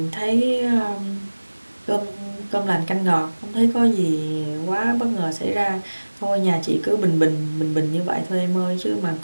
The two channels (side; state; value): both; inverted; correlation -1.00